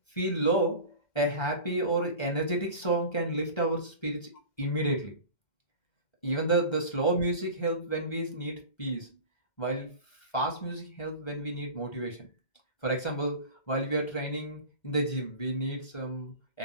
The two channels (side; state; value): right; late; 1.3 ms